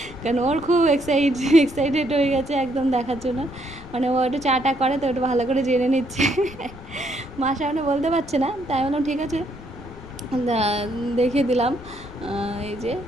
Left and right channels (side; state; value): left; noise; rumble, 17 dB below the sound